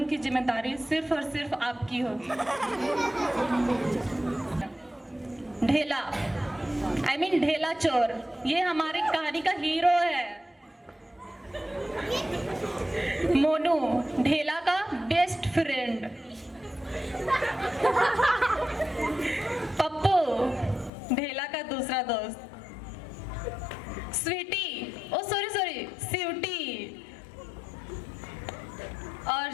की जिम्मेदारी सिर्फ और सिर्फ आपकी होगी। ढेला, ढेला चोर, ये हमारी कहानी का हीरो है। मोनू, ढेला का बेस्ट फ्रेंड। पप्पू, ढेला का दूसरा दोस्त। स्वीटी, ओ सॉरी स्वीटी। और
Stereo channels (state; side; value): drops out; right; at 20.9 s